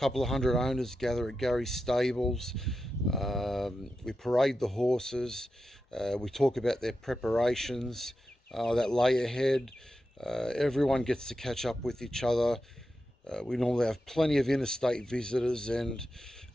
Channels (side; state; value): both; normal; correlation 0.90